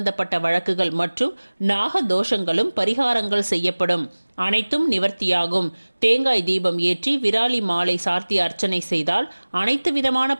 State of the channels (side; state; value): both; inverted; correlation -1.00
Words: வழக்குகள் மற்றும் நாக தோஷங்களும் பரிகாரங்கள் செய்யப்படும். அனைத்தும் நிவர்த்தியாகும். தேங்காய் தீபம் ஏற்றி விராலி மாலை சார்த்தி அர்ச்சனை செய்தால் அனைத்து விதமான